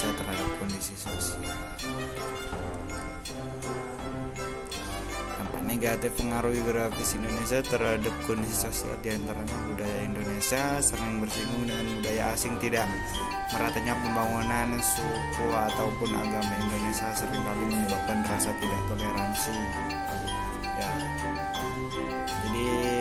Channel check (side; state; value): both; identical; correlation 1.00